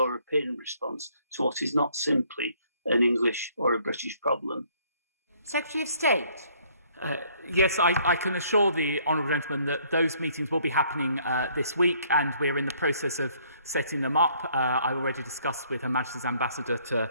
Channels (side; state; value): both; inverted; correlation -0.63